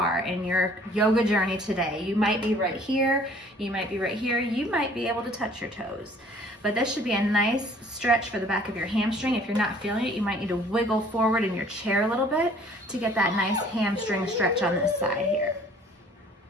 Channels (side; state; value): both; normal; correlation 0.54